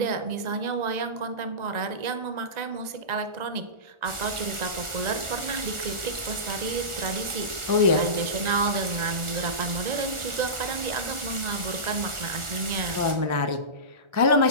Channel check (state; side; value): late; left; 1.4 ms